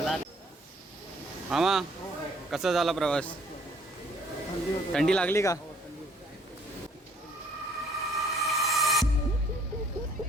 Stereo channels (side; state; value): both; normal; correlation 0.61